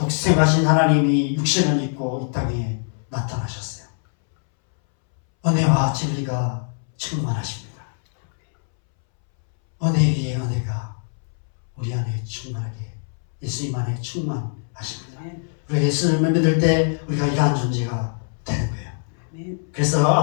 하나님이 육신을 입고 이 땅에 나타나셨어요. 은혜와 진리가 충만하십니다. 은혜 위에 은혜가 우리 안에 충만하게, 예수님 안에 충만하십니다. 우리가 예수님을 믿을 때 우리가 이러한 존재가 되는 거예요. 그래서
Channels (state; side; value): silent; right; 63 dB below the other